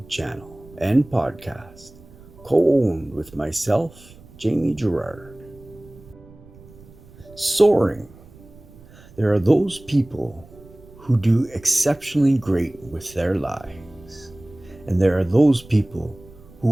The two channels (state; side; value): noise; right; rumble, 22 dB below the sound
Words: channel and podcast, co-owned with myself, Jamie Gerard. Soaring. There are those people who do exceptionally great with their lives, and there are those people